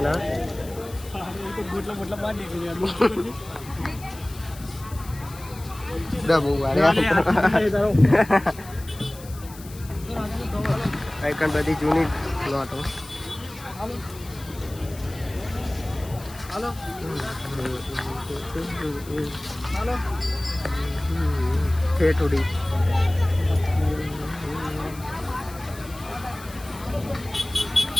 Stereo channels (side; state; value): left; noise; hiss, 18 dB below the sound